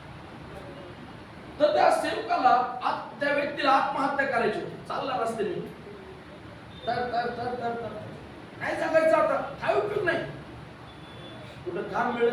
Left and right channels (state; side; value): identical; both; correlation 1.00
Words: तर त्या सेवकाला त्या व्यक्तीला आत्महत्या करायची होती. चालला रस्त्याने तर काय जगायचं आता? काय उपयोग नाही. कुठं काम